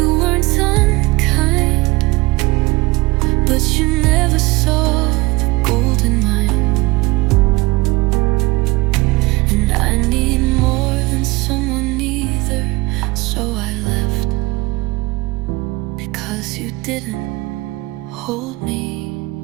weren't unkind, but you never saw the gold in mine. And I need more than someone either, so I left, because you didn't hold me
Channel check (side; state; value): left; quieter; 21.8 dB